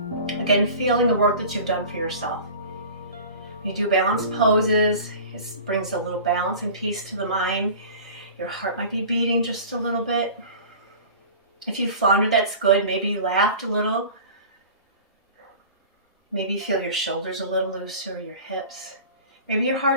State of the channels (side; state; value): both; inverted; correlation -0.40